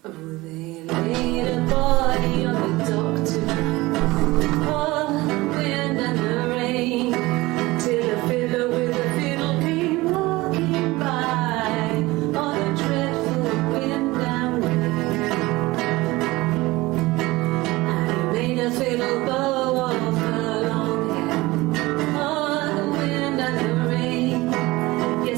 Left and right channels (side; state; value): left; quieter; 20.4 dB